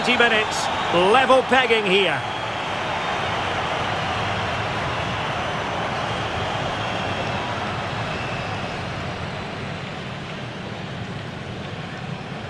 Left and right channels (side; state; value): both; identical; correlation 1.00